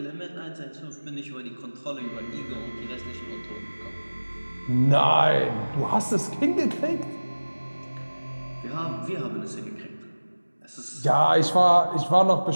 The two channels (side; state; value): both; inverted; correlation -1.00